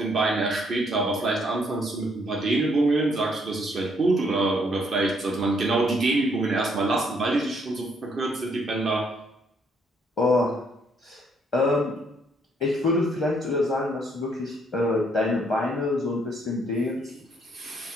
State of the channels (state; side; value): normal; both; correlation 0.69